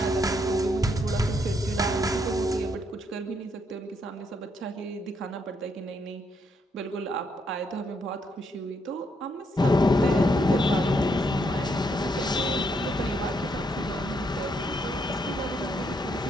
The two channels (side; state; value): both; normal; correlation 0.75